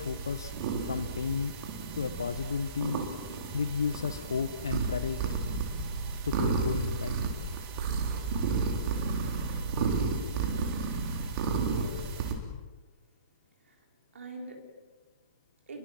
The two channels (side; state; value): both; inverted; correlation -0.48